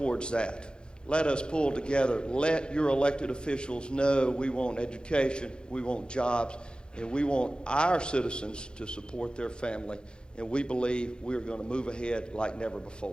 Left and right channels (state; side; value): late; right; 0.050 ms